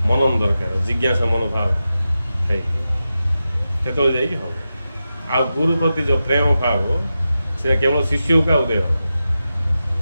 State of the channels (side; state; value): both; inverted; correlation -0.91